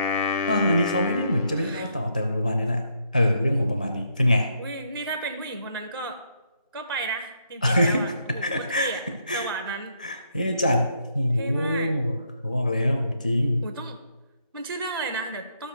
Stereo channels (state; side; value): inverted; both; correlation -0.74